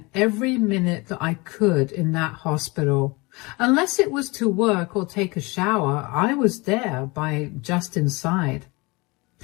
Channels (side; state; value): right; quieter; 25.5 dB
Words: every minute that I could in that hospital. Unless it was to work or take a shower, I was there by Justin's side.